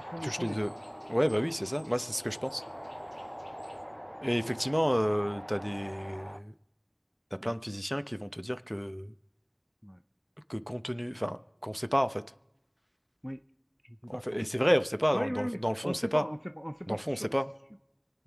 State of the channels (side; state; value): both; identical; correlation 1.00